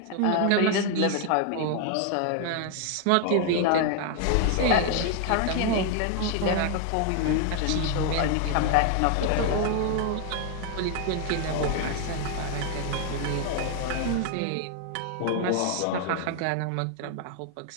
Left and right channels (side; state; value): both; different; correlation 0.00